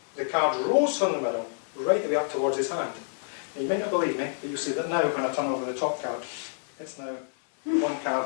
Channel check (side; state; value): right; silent; digital silence